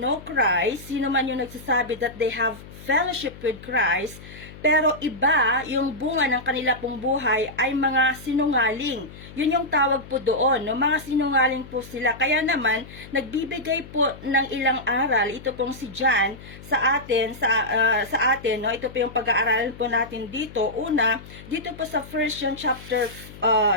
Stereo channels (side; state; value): left; noise; hum, 17 dB below the sound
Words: Christ, sino man yung nagsasabi that they have fellowship with Christ, pero iba yung bunga ng kanila pong buhay ay mga sinungaling. Yun yung tawag po doon, no? Mga sinungaling po sila. Kaya naman, nagbibigay po ng ilang aral, ito pong si John, sa atin, no? Ito po yung pag-aaralan po natin dito. Una, dito po sa 1 John chapter